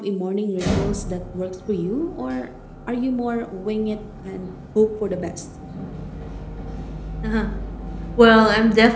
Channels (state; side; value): identical; both; correlation 1.00